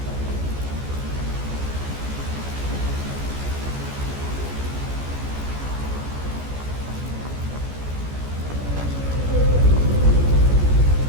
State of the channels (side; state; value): left; late; 14 ms